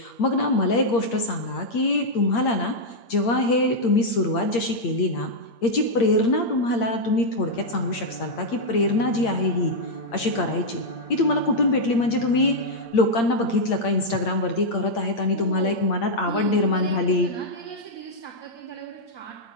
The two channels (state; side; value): late; right; 8.7 ms